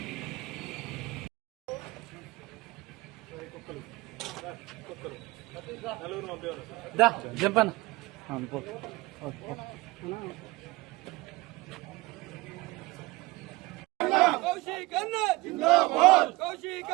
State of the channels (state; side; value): quieter; left; 21.7 dB